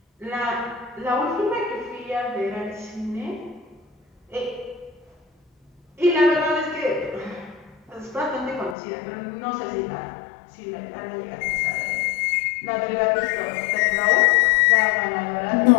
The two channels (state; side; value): drops out; right; at 8.8 s